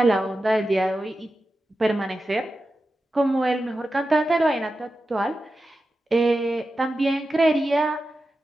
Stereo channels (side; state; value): both; normal; correlation 0.92